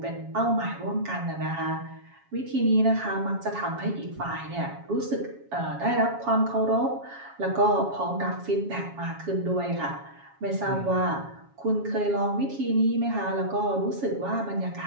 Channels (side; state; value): left; late; 7.3 ms